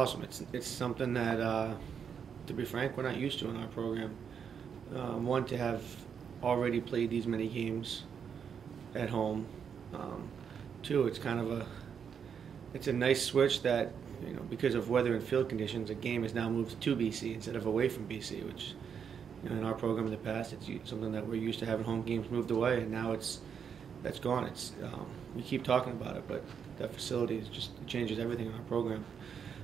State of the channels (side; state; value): left; quieter; 7.2 dB